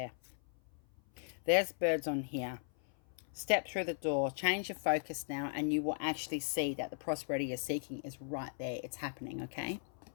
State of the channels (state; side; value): silent; right; 53 dB below the other